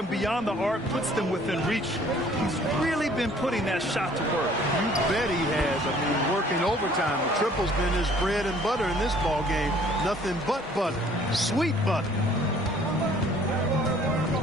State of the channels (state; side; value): normal; both; correlation 0.56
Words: beyond the arc puts them within reach. He's really been putting that shot to work. You bet he has. I mean, working overtime. The triple's been his bread and butter in this ball game. Nothing but butter. Sweet butter.